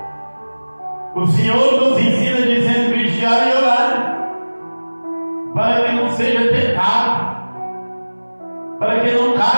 O Senhor nos ensina dizendo: vigiar e orar, para que não seja tentado, para que não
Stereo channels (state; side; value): inverted; both; correlation -1.00